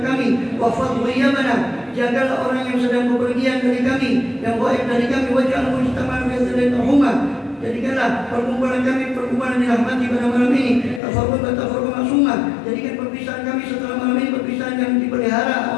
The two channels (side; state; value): right; drops out; at 11.0 s